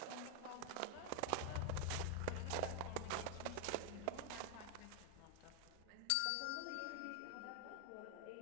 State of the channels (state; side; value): different; both; correlation 0.00